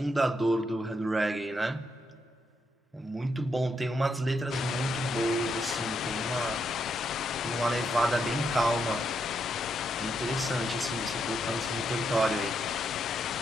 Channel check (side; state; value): both; normal; correlation 0.80